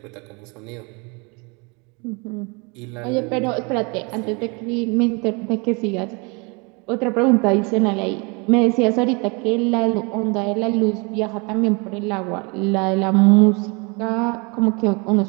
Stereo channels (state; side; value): quieter; left; 30.2 dB